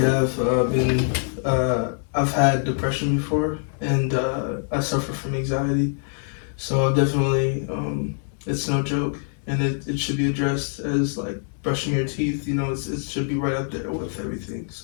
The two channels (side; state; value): right; silent; 59 dB below the other